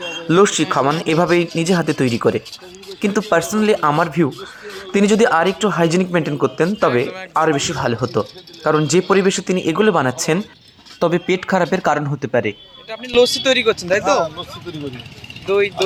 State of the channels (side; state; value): both; identical; correlation 1.00